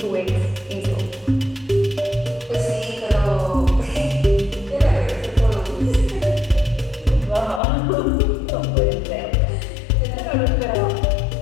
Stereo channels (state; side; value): drops out; right; at 7.6 s